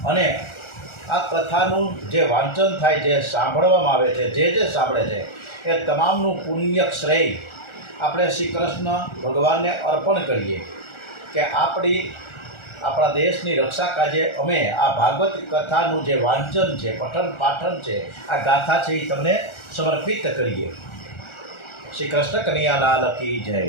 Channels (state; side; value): late; right; 1.4 ms